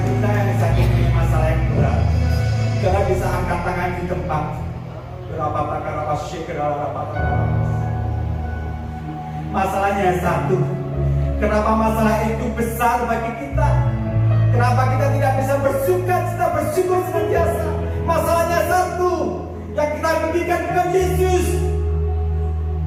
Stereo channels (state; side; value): identical; both; correlation 1.00